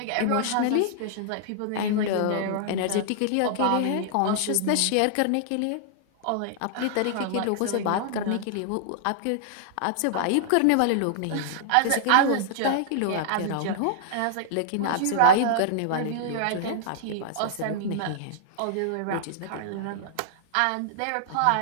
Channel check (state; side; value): different; both; correlation -0.01